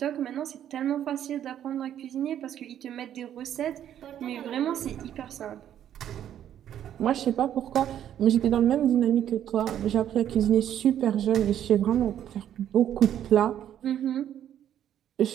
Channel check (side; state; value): left; quieter; 10.5 dB